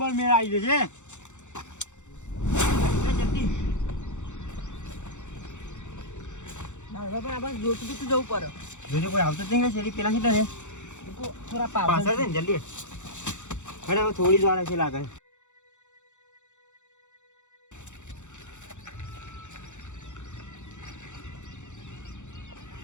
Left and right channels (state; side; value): late; right; 0.84 ms